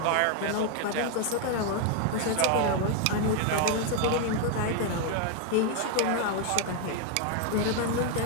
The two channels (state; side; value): different; both; correlation 0.00